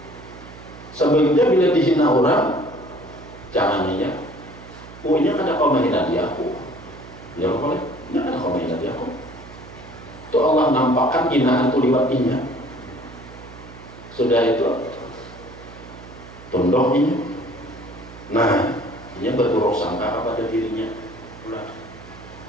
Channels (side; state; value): right; noise; hum, 17 dB below the sound